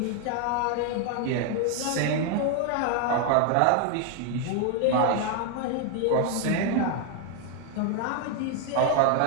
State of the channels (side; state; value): both; different; correlation 0.00